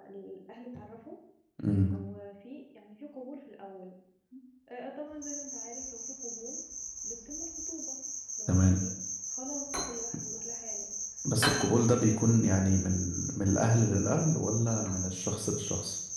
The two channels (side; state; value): both; identical; correlation 1.00